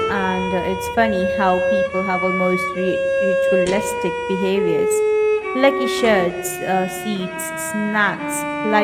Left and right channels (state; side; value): identical; both; correlation 1.00